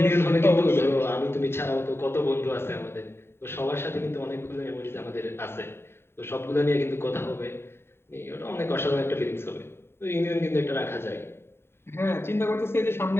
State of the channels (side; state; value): right; late; 0.11 ms